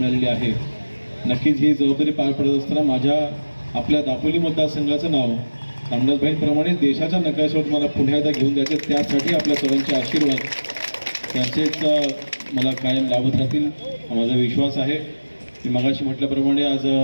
आहे, नक्कीच ही जबाबदारी पार पडत असताना आपल्या दापोली मतदारसंघाचं नाव रामदासभाईंप्रमाणे देशाच्या नकाशावर मला पुन्हा एकदा घेऊन द्यायचे, त्यासाठी आपल्या सर्वांचे आशीर्वाद त्यांचेच मला कायम लाभत राहतील हा माझा विश्वास आहे। मी मगाशी म्हटल्याप्रमाणे आज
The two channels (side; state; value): both; inverted; correlation -1.00